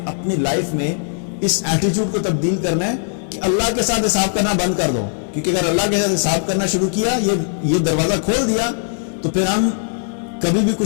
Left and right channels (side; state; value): right; silent; digital silence